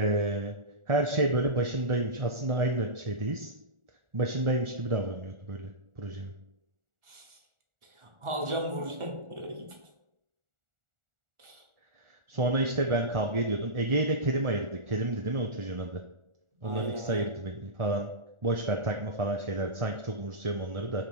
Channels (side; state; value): left; late; 1.4 ms